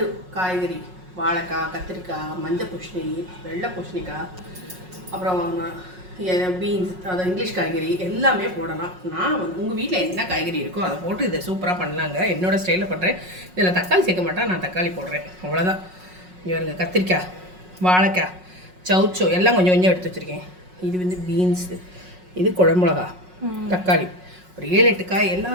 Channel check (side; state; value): left; late; 5.5 ms